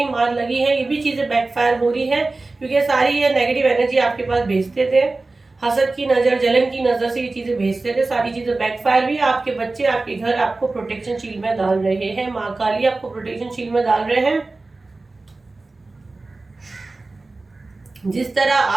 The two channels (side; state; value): left; quieter; 3.4 dB